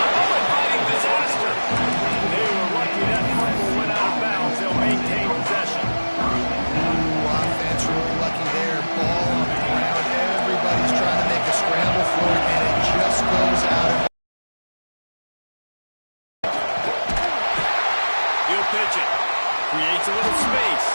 inviting disaster. They were lucky that fumble went out of bounds. They'll maintain possession. Offense really lucky there. Ball on the ground. Everybody's trying to make a scramble for it, and it just goes out of. He'll pitch it. Creates a little space.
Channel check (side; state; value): both; inverted; correlation -1.00